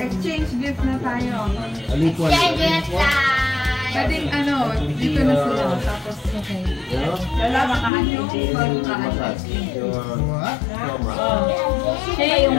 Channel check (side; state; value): right; drops out; at 7.9 s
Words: gift na tayo. Exchange gift time! Pwedeng dito na sila. Tapos, okay. Lalabakaan yung magkaan. Siya yung...